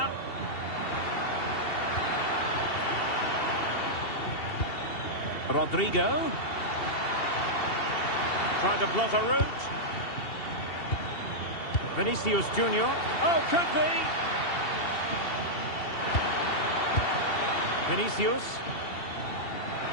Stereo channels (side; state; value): right; late; 2.7 ms